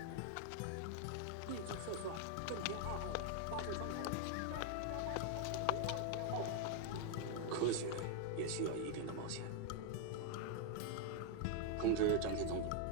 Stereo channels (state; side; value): different; both; correlation 0.00